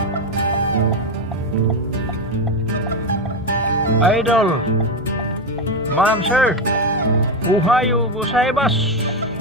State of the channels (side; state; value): both; normal; correlation 0.10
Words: Idol. Ma'am sir. Ohayo gozaimasu.